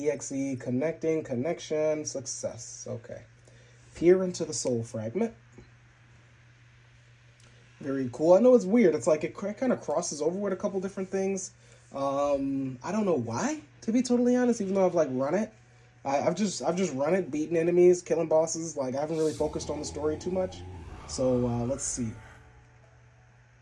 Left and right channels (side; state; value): both; identical; correlation 1.00